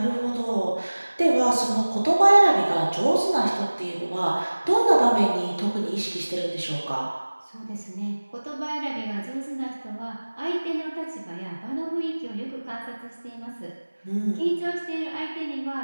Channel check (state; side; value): inverted; both; correlation -1.00